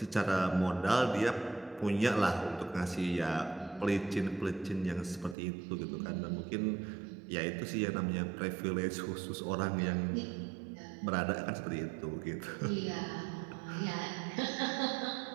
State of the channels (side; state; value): left; drops out; at 5.4 s